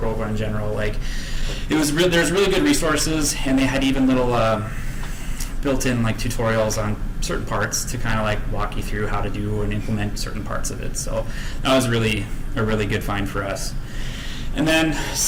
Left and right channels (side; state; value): both; identical; correlation 1.00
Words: in general. Like, there's really good resources, and they had even little built-in like tutorials on certain parts to kind of like walk you through how to do and implement certain parts of it. So that was really a really good find for us. And then